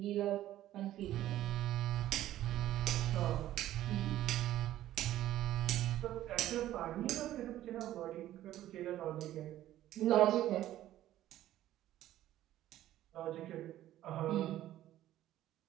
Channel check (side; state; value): left; quieter; 13.5 dB